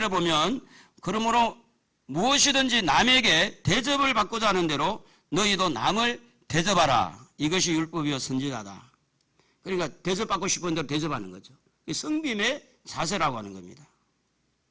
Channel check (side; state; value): both; identical; correlation 1.00